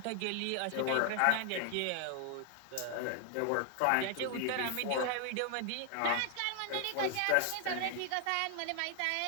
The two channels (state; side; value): different; both; correlation 0.00